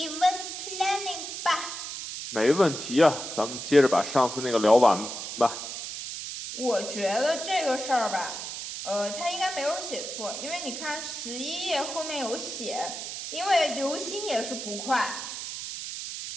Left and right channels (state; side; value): noise; right; hiss, 7 dB below the sound